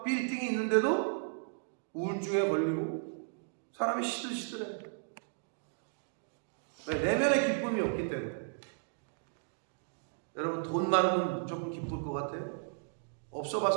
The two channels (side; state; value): left; silent; digital silence